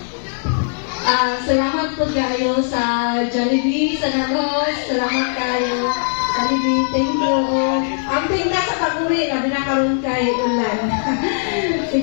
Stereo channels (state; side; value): silent; right; 66 dB below the other